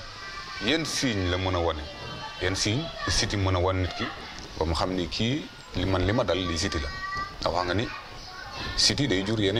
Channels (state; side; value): identical; both; correlation 1.00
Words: yenn signe la mën a wane yenn signe siti mën a wan nit ki ba mu xam ni kii li ma dal li siti la ndax wax nga ni siti day jur